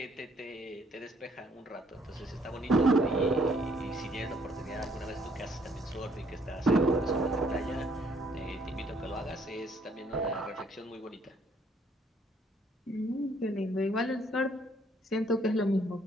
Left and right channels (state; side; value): normal; both; correlation 0.66